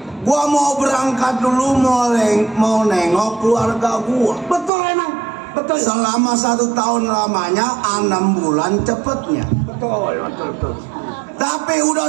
gua mau berangkat dulu mau nengok keluarga gua. Betul emang, betul. Selama 1 tahun lamanya, 6 bulan cepetnya. Betul. Tapi udah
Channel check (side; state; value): left; drops out; at 4.7 s